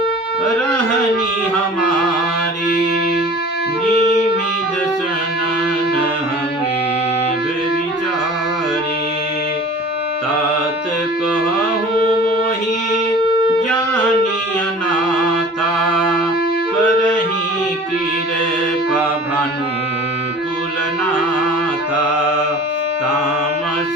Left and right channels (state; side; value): normal; both; correlation 0.43